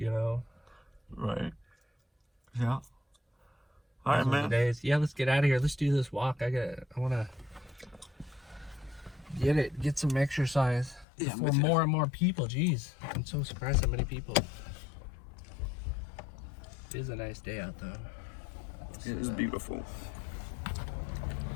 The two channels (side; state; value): right; drops out; at 11.1 s